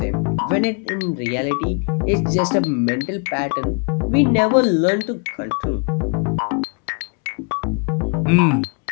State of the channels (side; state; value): right; quieter; 36.2 dB